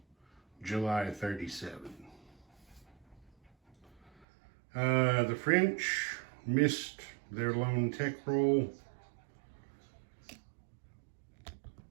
July 37. The French missed their lone tech roll.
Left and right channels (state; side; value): drops out; left; at 4.2 s